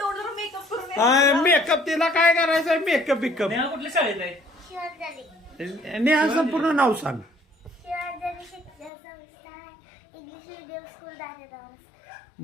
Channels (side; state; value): right; drops out; at 8.9 s